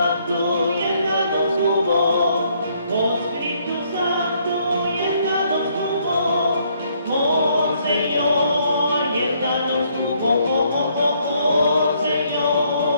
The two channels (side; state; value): both; inverted; correlation -0.69